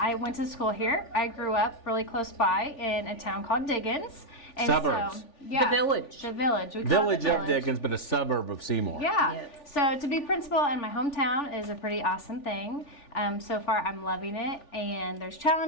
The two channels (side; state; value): right; late; 3.4 ms